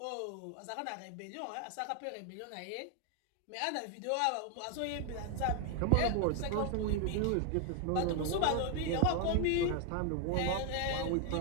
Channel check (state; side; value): different; both; correlation 0.00